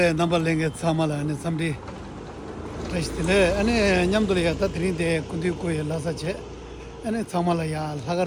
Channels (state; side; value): identical; both; correlation 1.00